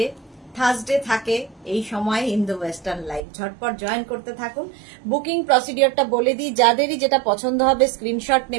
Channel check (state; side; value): drops out; left; at 3.2 s